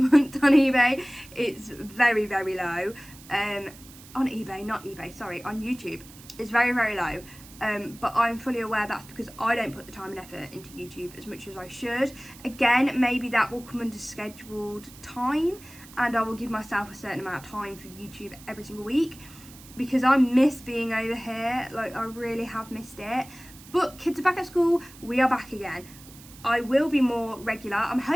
on eBay. It's very, very low. On eBay, not eBay, sorry, on YouTube. It's very, very low. But I'm fully aware that's because I don't put the time and effort into YouTube as much as I should. Again, maybe that will come under scheduled time, and I will give myself a certain amount of time for YouTube every single week, because I miss being over here. Like, I really have missed it. But kids are back at school, we are back again. I will be more regular. I'm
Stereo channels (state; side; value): noise; right; hiss, 20 dB below the sound